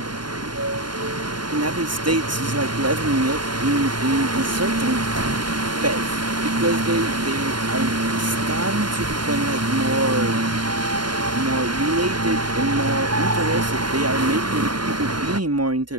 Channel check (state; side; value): late; left; 0.71 ms